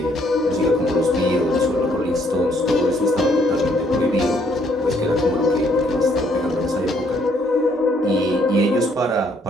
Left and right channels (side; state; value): both; normal; correlation 0.67